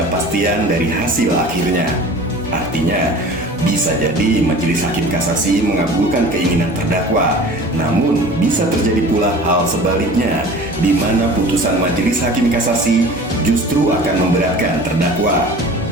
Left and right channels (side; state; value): both; normal; correlation 0.42